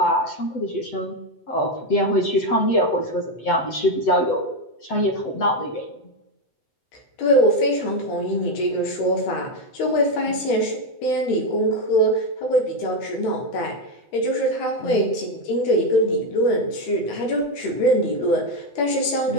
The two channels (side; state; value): right; late; 8.0 ms